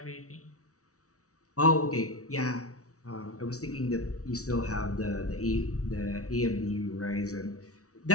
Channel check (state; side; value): late; right; 0.65 ms